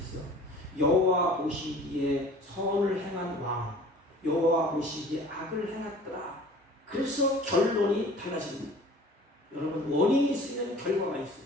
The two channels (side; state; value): both; normal; correlation 0.46